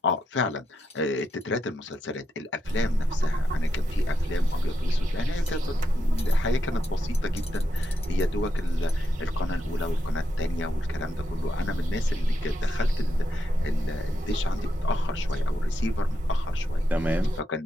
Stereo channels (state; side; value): normal; both; correlation 0.83